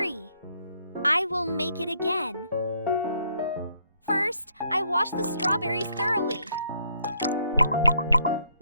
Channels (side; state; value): both; inverted; correlation -0.70